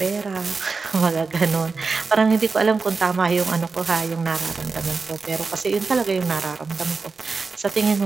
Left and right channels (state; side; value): quieter; left; 4.4 dB